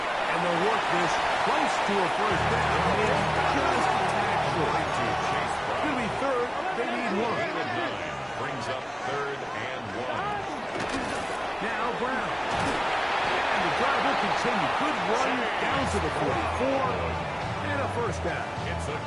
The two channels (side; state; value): both; identical; correlation 1.00